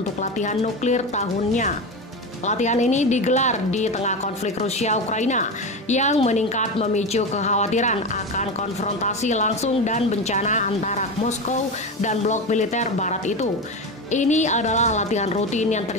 latihan nuklir tahunnya. Latihan ini digelar di tengah konflik Rusia-Ukraina yang meningkat memicu kekhawatiran akan konfrontasi langsung dan bencana antara Moskow dan blok militer barat itu. Ini adalah latihan rutin yang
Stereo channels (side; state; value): both; normal; correlation 0.21